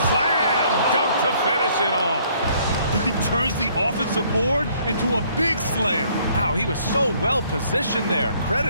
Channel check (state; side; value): inverted; both; correlation -0.63